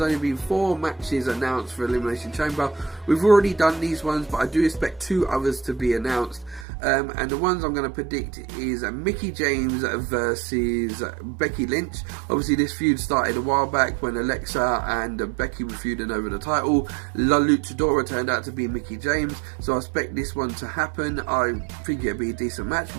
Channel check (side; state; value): left; drops out; at 6.7 s